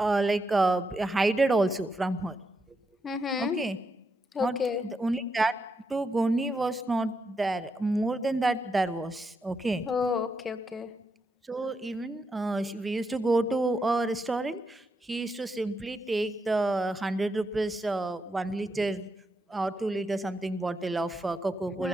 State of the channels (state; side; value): normal; both; correlation 0.83